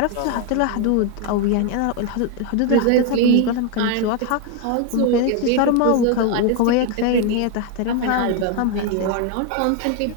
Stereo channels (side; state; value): both; different; correlation 0.01